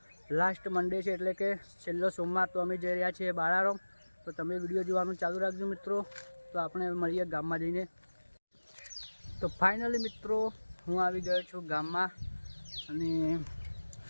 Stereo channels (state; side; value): inverted; both; correlation -1.00